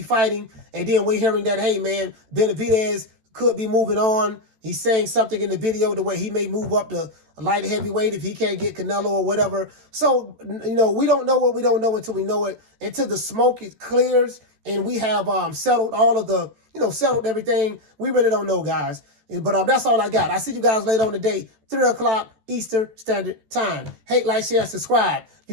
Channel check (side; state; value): left; late; 13 ms